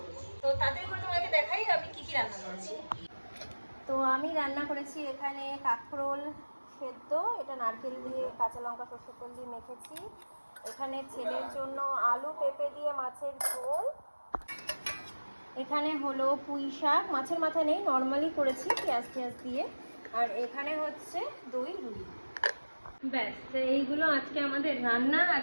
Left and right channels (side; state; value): both; inverted; correlation -1.00